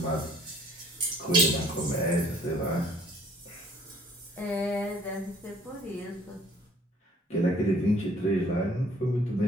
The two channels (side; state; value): both; normal; correlation 0.57